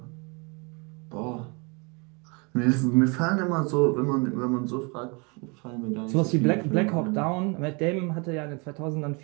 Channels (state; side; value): quieter; left; 31.1 dB